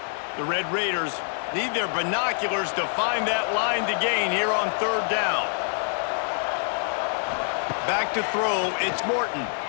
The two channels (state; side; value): silent; right; 61 dB below the other